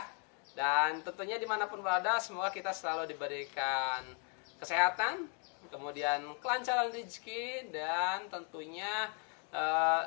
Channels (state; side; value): quieter; right; 38.9 dB